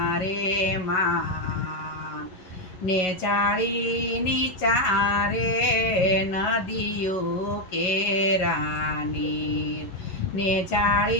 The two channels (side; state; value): right; late; 11 ms